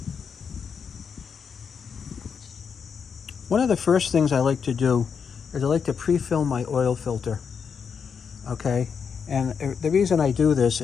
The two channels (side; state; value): right; quieter; 6.5 dB